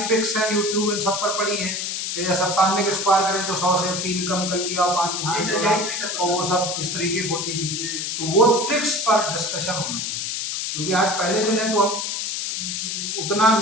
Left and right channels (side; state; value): left; noise; hiss, 2 dB below the sound